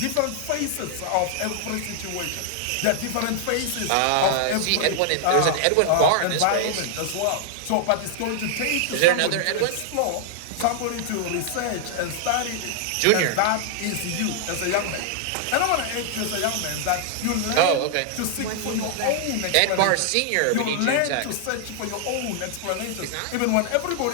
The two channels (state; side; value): different; both; correlation 0.00